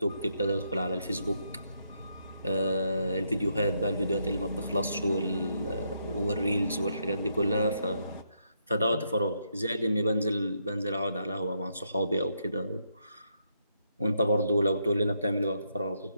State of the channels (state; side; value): inverted; both; correlation -0.78